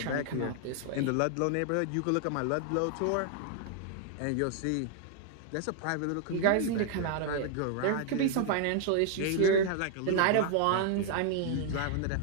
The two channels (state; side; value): different; both; correlation 0.00